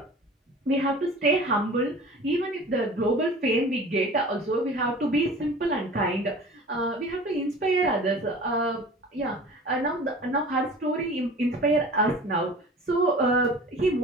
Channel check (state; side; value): normal; both; correlation 0.41